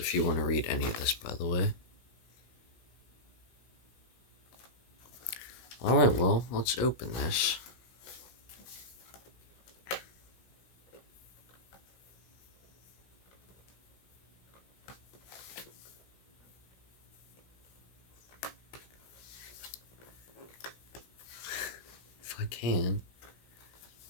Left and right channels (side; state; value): right; late; 16 ms